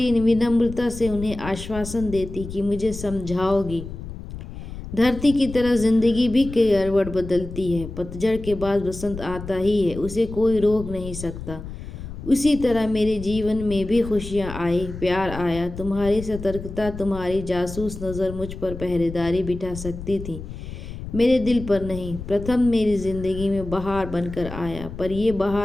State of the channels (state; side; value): noise; left; rumble, 10 dB below the sound